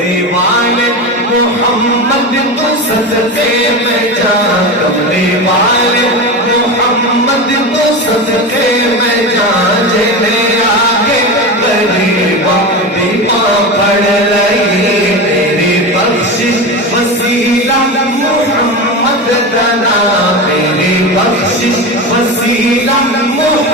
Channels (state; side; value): normal; both; correlation 0.22